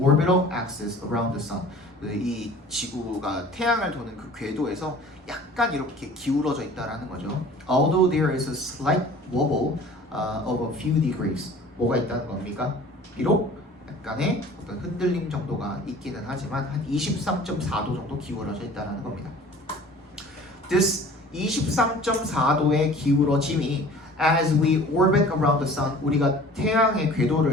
axis around the sun. 이 지구가 태양을 도는 그 궤도에서 약간 이렇게 기울어져 있다라는 거죠. Although there is a slight wobble of a few degrees. 뭐가 있다는 겁니까? 비록 약간의 어떤 흔들림 정도가 있기는 하지만 한 23.4도 정도 기울어져 있다는 겁니다. This 23.4도의 기울어짐이 as we orbit around the sun, 우리가 태양의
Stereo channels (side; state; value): both; normal; correlation 0.46